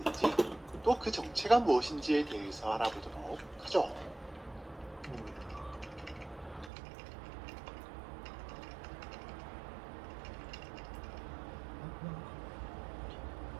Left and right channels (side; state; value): left; drops out; at 6.7 s